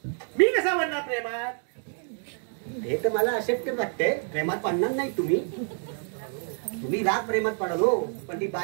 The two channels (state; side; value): silent; left; 56 dB below the other